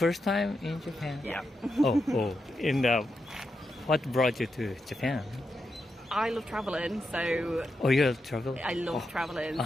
time in Japan? Yeah. Oh. And what brought you to Japan? I love travelling, so Oh, you travel? I love travelling,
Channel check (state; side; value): normal; both; correlation 0.86